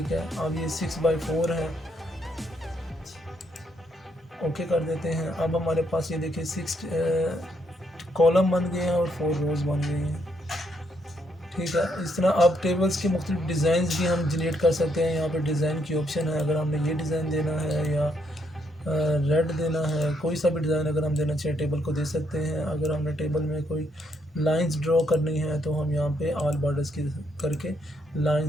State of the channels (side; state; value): both; normal; correlation 0.74